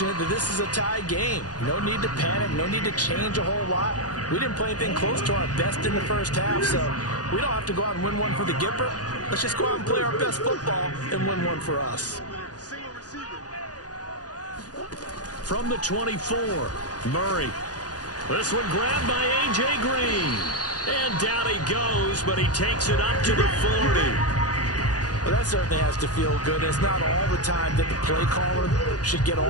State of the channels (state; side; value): late; right; 0.68 ms